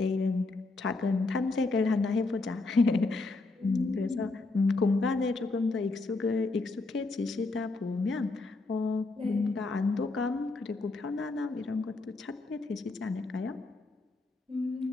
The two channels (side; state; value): right; quieter; 3.4 dB